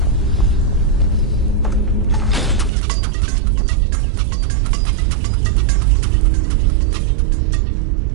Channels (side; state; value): left; drops out; at 2.7 s